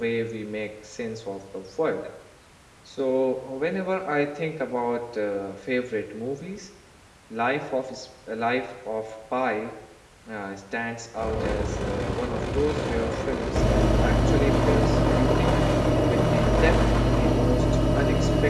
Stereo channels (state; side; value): identical; both; correlation 1.00